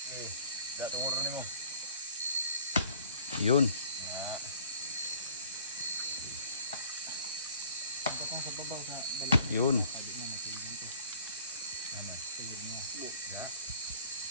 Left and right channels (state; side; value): inverted; both; correlation -0.52